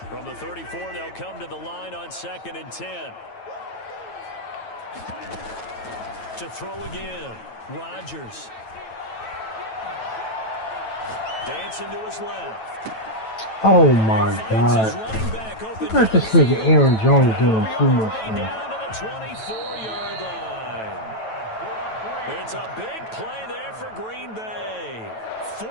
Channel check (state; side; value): late; right; 9.1 ms